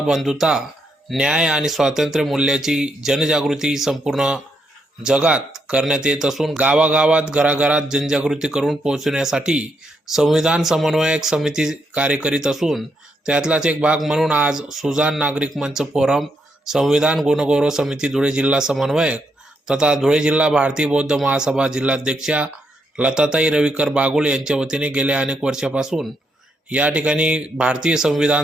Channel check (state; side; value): normal; both; correlation 0.79